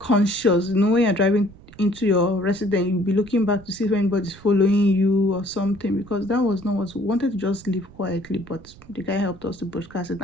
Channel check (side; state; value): right; noise; rumble, 22 dB below the sound